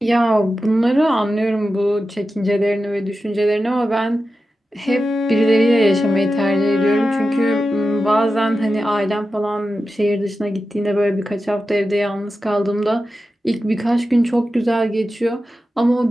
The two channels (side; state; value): both; normal; correlation 0.92